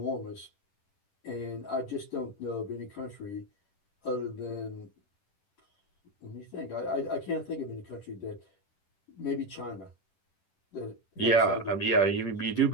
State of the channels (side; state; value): right; late; 10 ms